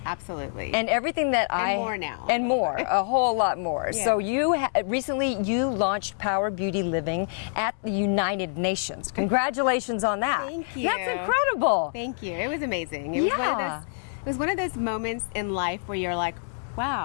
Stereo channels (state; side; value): silent; right; digital silence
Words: absolutely. And everything that And more now. And more, a whole lot more. Yeah. So recently you launched Power Beauty Living at the United Nations. Congratulations on that. Thank you. That's incredible. Thank you. It was amazing. It was one of those moments in life where you're like,